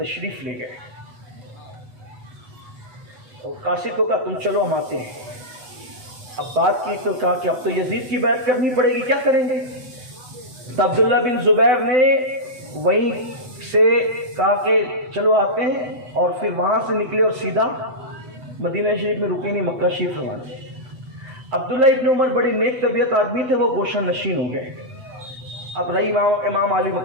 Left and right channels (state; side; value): late; left; 8.1 ms